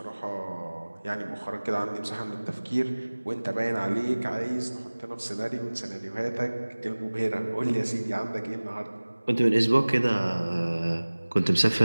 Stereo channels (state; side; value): inverted; both; correlation -1.00